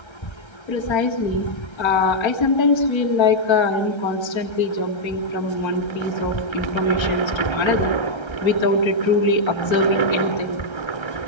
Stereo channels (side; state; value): right; late; 1.3 ms